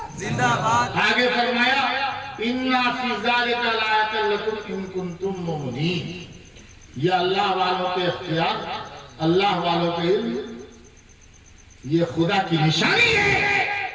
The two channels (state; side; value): identical; both; correlation 1.00